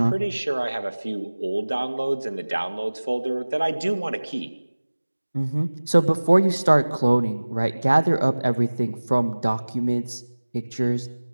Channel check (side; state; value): both; inverted; correlation -1.00